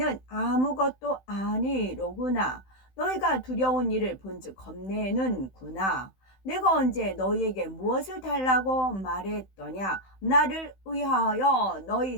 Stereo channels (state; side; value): late; right; 16 ms